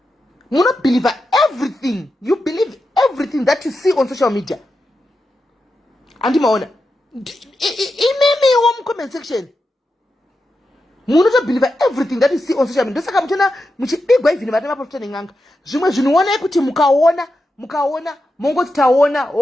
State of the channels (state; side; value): normal; both; correlation 0.88